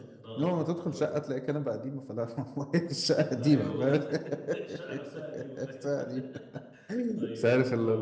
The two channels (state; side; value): identical; both; correlation 1.00